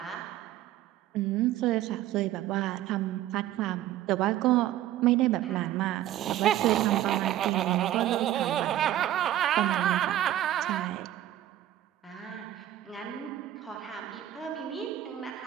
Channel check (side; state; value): left; quieter; 13.0 dB